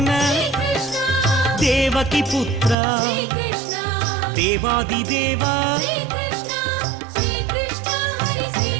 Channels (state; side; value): drops out; left; at 2.8 s